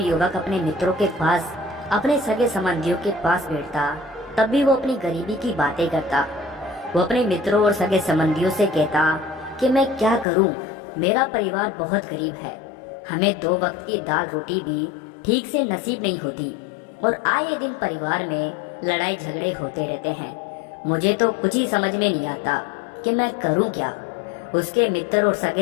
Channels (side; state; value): right; drops out; at 10.2 s